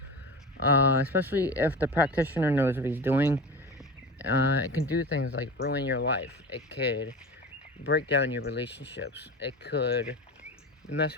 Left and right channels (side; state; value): both; normal; correlation 0.30